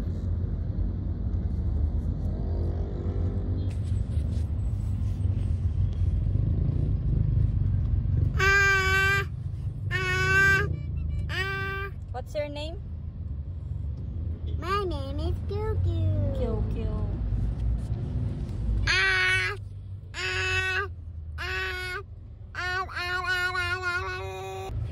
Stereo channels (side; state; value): both; identical; correlation 1.00